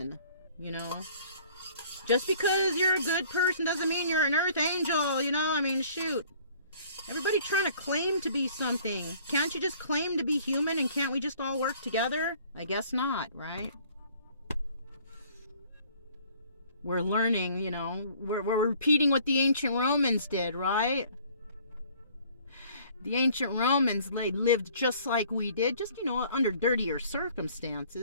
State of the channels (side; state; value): both; inverted; correlation -0.55